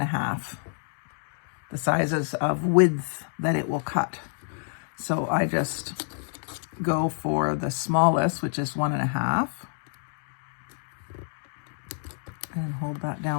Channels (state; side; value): silent; right; digital silence